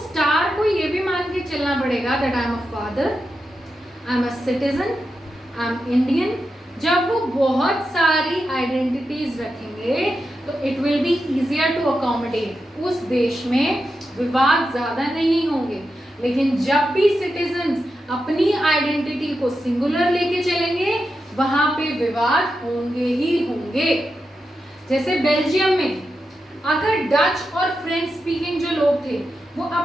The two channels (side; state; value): both; normal; correlation 0.88